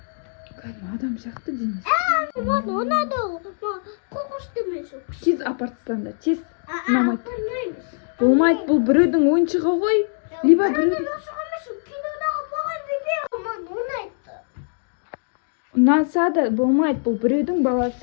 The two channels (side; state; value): right; silent; digital silence